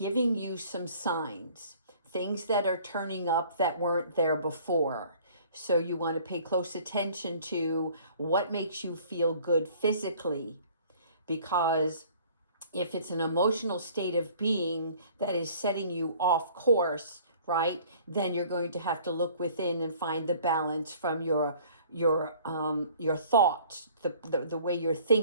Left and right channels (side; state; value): both; inverted; correlation -0.53